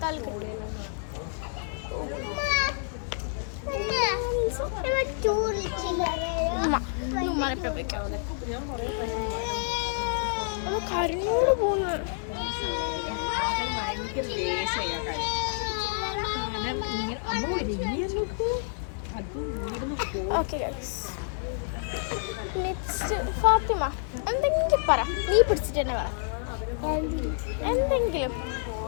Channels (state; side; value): silent; right; 59 dB below the other